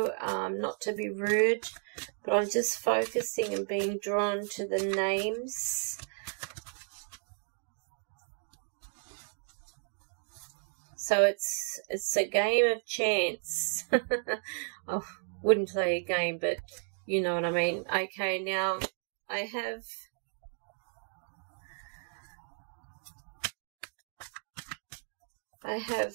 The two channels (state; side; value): silent; left; 56 dB below the other